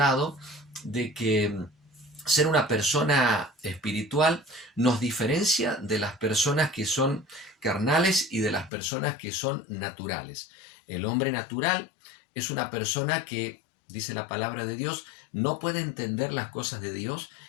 de que ser una persona espiritual nos diferencia de las personas que son carnales y de las personas que son naturales. El hombre natural es una persona que, dice la palabra de Dios, no puede entender las cosas de Dios,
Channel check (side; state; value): right; drops out; at 8.7 s